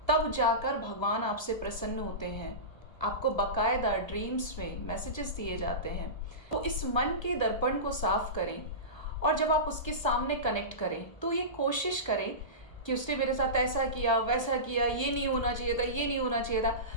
तब जाकर भगवान आपसे प्रसन्न होते हैं। आपको बकायदा ड्रीम्स में मैसेजेस दिए जाते हैं। तो इस मन के दर्पण को साफ करें, और जब आप उसके सामने कनेक्ट करें तो ये कोशिश करें कि उसने मेरे साथ ऐसा किया, वैसा किया, ये नहीं होना चाहिए था, ये नहीं होना चाहिए था।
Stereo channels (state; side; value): late; right; 1.3 ms